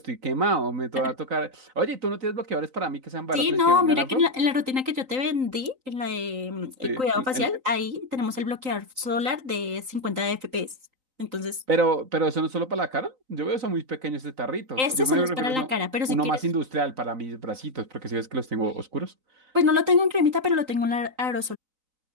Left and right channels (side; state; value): left; late; 3.8 ms